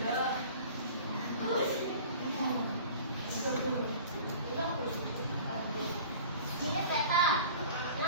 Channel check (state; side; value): inverted; both; correlation -0.43